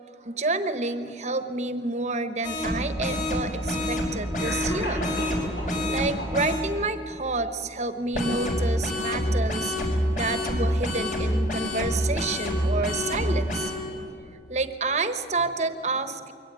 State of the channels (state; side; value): normal; both; correlation 0.43